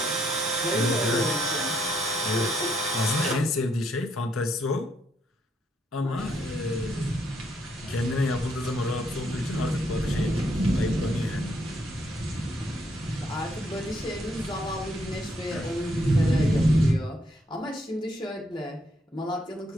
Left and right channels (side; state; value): both; normal; correlation 0.73